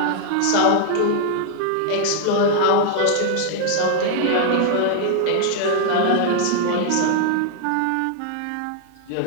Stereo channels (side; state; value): both; different; correlation 0.00